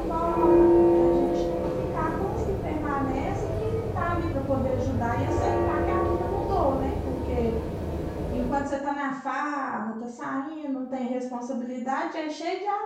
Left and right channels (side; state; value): both; identical; correlation 1.00